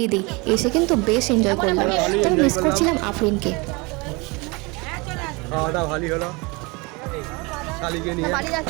দিই, এসে কিন্তু বেশ এনজয় করলাম। তবে মিস করছিলাম আফরিনকে। খাওয়া দাওয়া ভালোই হলো, শালিকে নিয়ে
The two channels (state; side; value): quieter; left; 27.0 dB